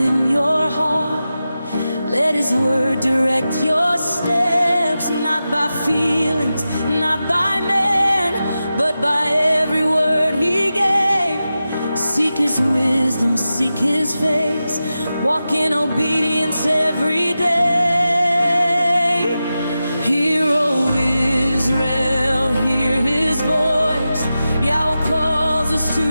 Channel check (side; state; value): both; inverted; correlation -0.92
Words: your heart. Let His word direct your steps, not by feelings, not by man, but by every word He gave. Seek His wisdom, seek His face, walk in obedience every day. Hear, O Israel, hear His voice. Yahuah calls us to